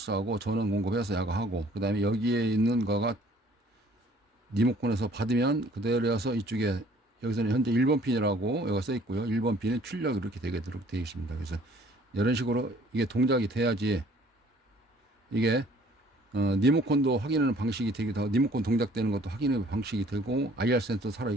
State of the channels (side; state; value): both; normal; correlation 0.56